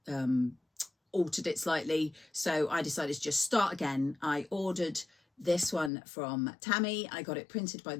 altered it slightly. So I decided to just start again. I ordered this one from Tammy. I got it printed by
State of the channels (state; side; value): drops out; right; at 5.9 s